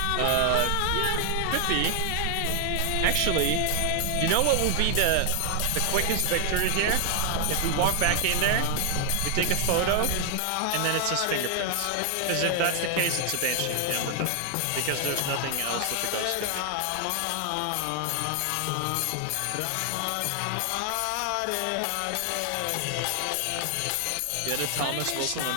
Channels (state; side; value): different; both; correlation 0.00